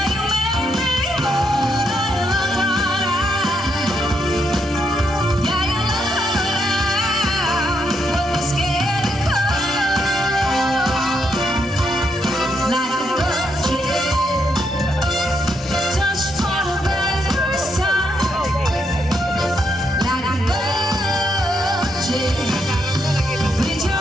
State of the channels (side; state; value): both; normal; correlation 0.78